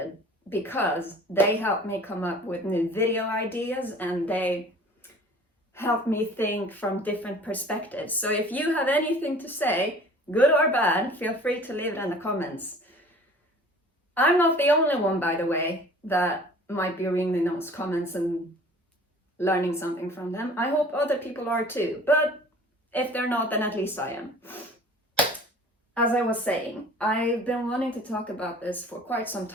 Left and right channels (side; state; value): both; normal; correlation 0.47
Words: because they help me come up with new video ideas and they help me think from different perspectives. So if you have anything to say, good or bad, feel free to leave it in the comments. I'm not the only one, by the way, that might be reading those comments and learning something from them. I hope other people are too, but if they're not, then at least I am. As I was saying, I've been wanting to talk about this for quite some